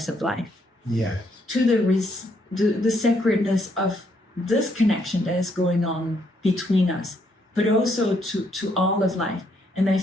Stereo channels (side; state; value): both; normal; correlation 0.72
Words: of life, to the sacredness of this connection that is going on between us, but also to all of life. And I